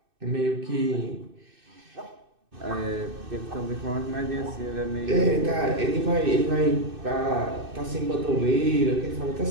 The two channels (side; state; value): left; late; 2.6 ms